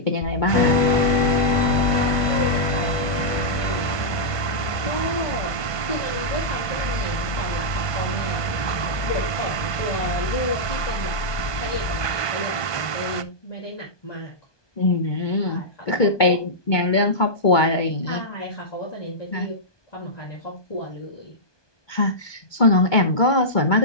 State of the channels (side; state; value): right; late; 1.2 ms